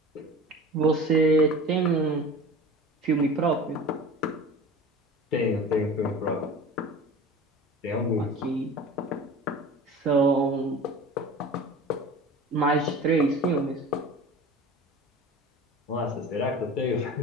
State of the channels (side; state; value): both; normal; correlation 0.37